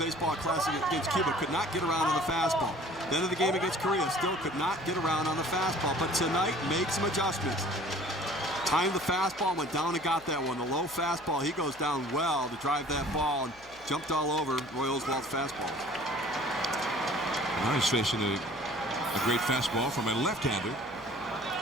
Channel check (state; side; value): noise; left; hum, 26 dB below the sound